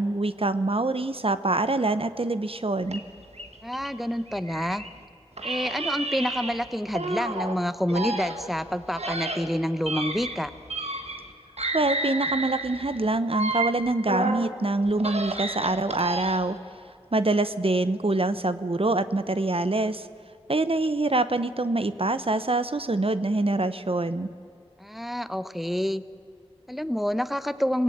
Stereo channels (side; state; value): both; normal; correlation 0.65